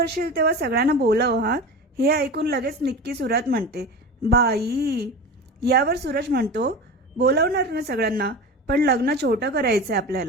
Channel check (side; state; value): both; normal; correlation 0.30